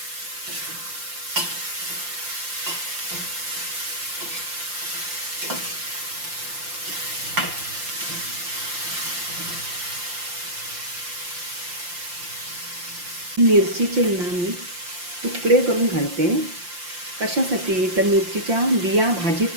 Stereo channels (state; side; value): late; left; 5.7 ms